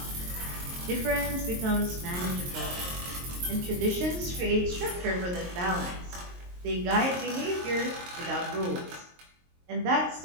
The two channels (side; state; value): left; late; 23 ms